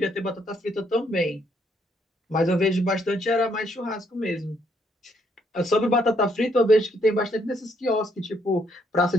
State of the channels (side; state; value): both; normal; correlation 0.71